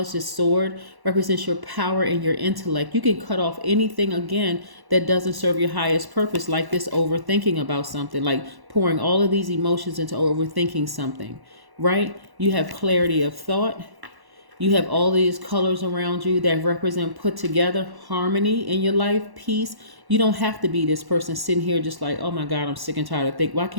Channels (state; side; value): late; left; 1.1 ms